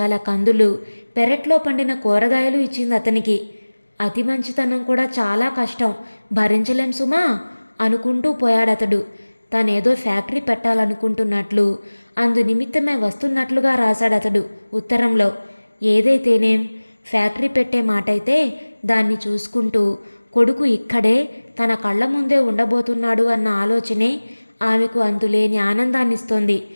కందులు, పెరట్లో పండిన కూరగాయలు ఇచ్చింది అతనికి. అతి మంచితనం కూడా చాలా కష్టం, భరించలేం సుమా అనుకుంటూ పోయాడతడు. తనేదో ఫ్యాక్టరీ పెట్టాలనుకుంటున్నట్లు, అందు నిమిత్తమే వస్తున్నట్లుగా రాశాడతడు ఉత్తరంలో. ఏదైతేనేం ఫ్యాక్టరీ పెట్టే మాటైతే దాన్ని చూసుకుంటూ కొడుకు ఇక్కడే తన కళ్ళ ముందే ఉండబోతున్నాడు అన్న ఆలోచనే ఆమెకు అంతులేని ఆనందాన్నిస్తోంది.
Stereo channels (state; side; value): inverted; both; correlation -1.00